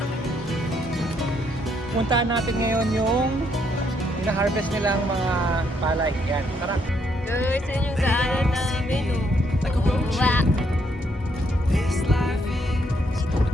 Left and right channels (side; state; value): both; normal; correlation 0.73